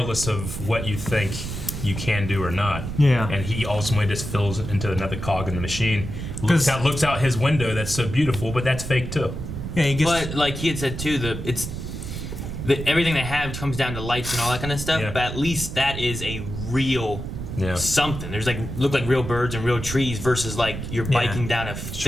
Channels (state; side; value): noise; right; rumble, 7 dB below the sound